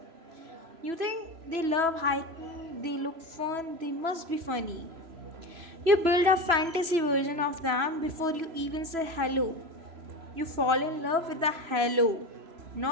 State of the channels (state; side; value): late; left; 3.0 ms